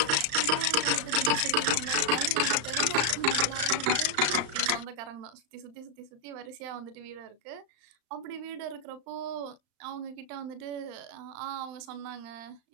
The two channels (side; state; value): left; late; 35 ms